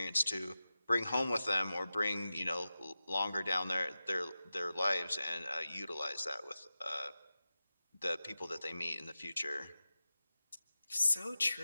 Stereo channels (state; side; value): inverted; both; correlation -0.94